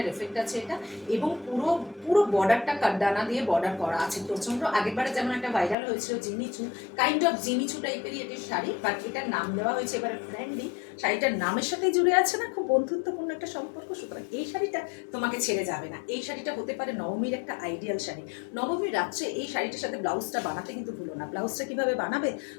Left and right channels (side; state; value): right; drops out; at 5.8 s